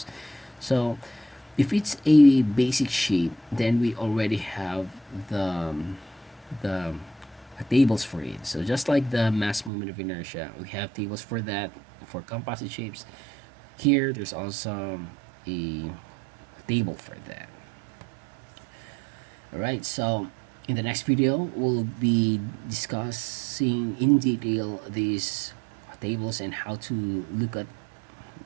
So if it's a basic shape, then we already have the tables for it. So just like the mass moment of inertia, we have tables for that for composite shapes. Here, there's also a table for that. All right. So in the next video, we'll be discussing in detail these tables and how to look at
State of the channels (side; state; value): left; drops out; at 9.7 s